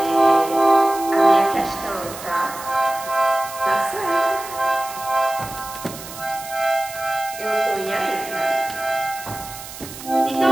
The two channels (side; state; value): right; noise; hiss, 13 dB below the sound